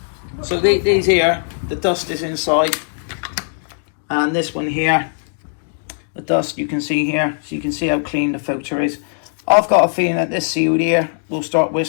So these here, the dust is inside. And this one here, the dust you can see here. So you can see how clean the filter is. I've got a feeling that this sealed here will start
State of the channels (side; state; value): right; silent; digital silence